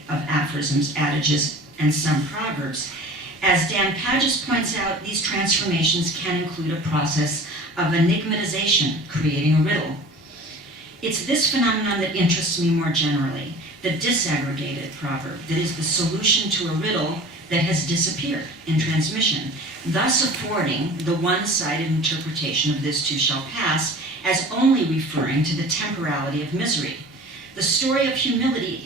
of aphorisms, adages, and some proverbs. As Dan Pages points out, these transformations can include a process of enigmatization, creating a riddle. It's this phenomenon that interests me more generally, the disaggregated proverb, that is the solution to a riddle that has disappeared in transmission, thus affording the one-sided interpretation of this too shall pass as only referring to the temporality of misery. The story of humility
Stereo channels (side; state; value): both; normal; correlation 0.41